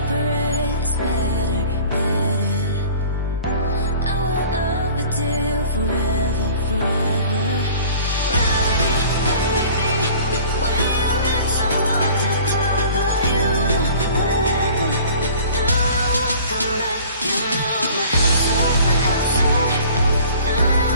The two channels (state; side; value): inverted; both; correlation -0.46